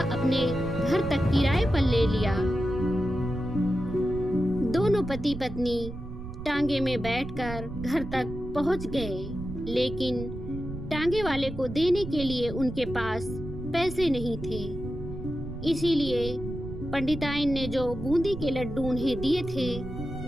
अपने घर तक किराए पर ले लिया। दोनों पति पत्नी टांगे में बैठकर घर तक पहुंच गए, लेकिन टांगे वाले को देने के लिए उनके पास पैसे नहीं थे। इसीलिए पंडिताइन ने जो बूंदी के लड्डू उन्हें दिए थे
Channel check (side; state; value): right; noise; rumble, 10 dB below the sound